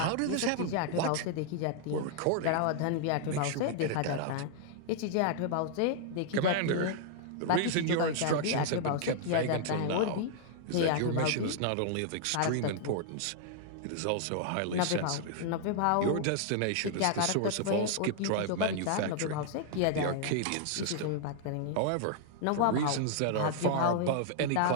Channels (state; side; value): different; both; correlation -0.01